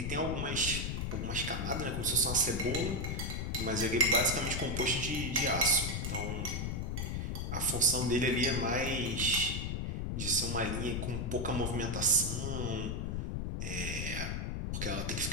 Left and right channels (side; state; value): left; noise; rumble, 2 dB below the sound